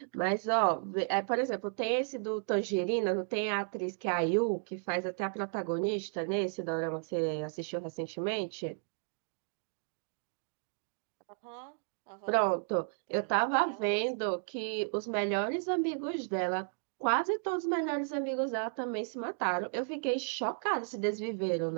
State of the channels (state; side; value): silent; left; digital silence